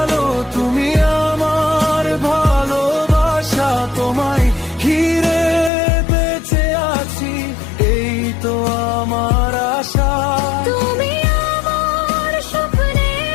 তুমি আমার ভালোবাসা। তোমায় ঘিরে বেঁচে আছি, এই তো আমার আশা। তুমি আমার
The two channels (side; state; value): right; drops out; at 5.7 s